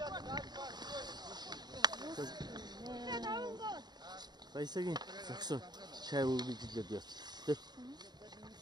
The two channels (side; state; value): left; late; 0.20 ms